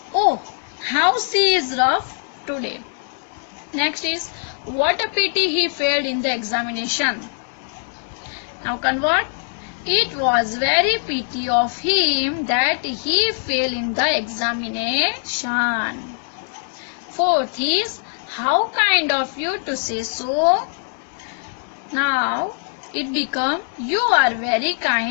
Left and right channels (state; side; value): silent; right; 64 dB below the other